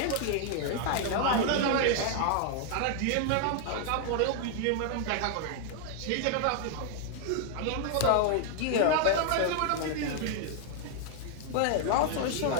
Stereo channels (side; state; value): both; different; correlation 0.00